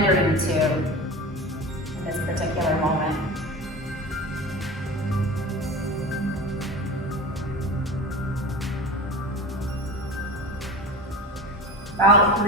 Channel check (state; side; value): normal; both; correlation 0.31